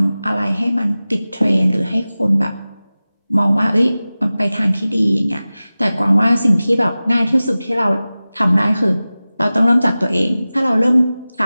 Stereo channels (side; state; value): both; inverted; correlation -0.97